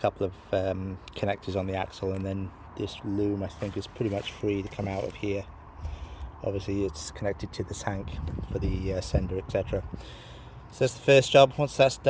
of connectors on the axle, and then this loom I think is pretty much free to come out of here. Obviously it's connected to the tank for the sender, etc. So that's the first job. Once that's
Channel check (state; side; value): identical; both; correlation 1.00